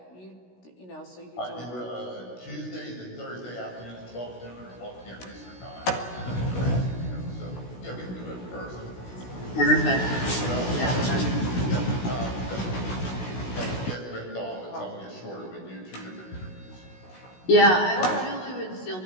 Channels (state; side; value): late; right; 16 ms